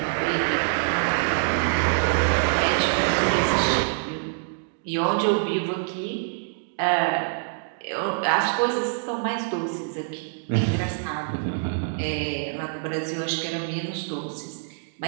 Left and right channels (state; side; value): silent; left; digital silence